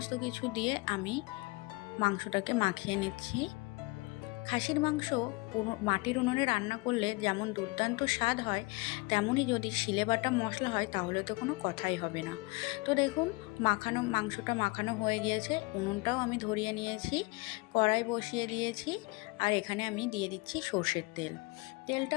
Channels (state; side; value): quieter; right; 25.8 dB